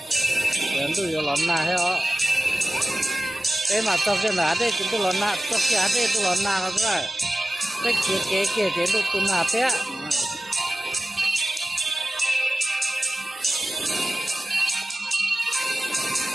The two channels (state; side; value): normal; both; correlation 0.96